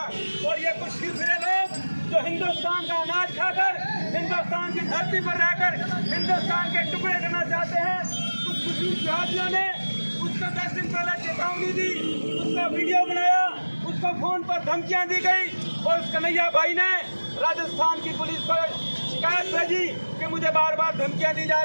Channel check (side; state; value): both; inverted; correlation -1.00